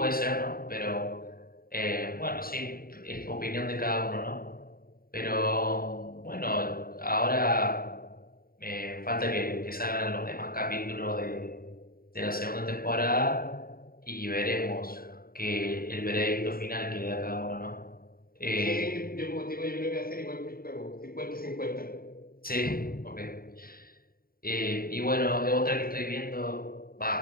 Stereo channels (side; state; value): right; late; 0.43 ms